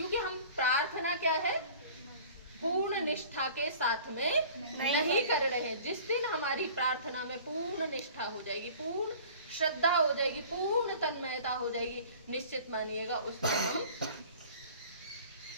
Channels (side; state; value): both; inverted; correlation -0.46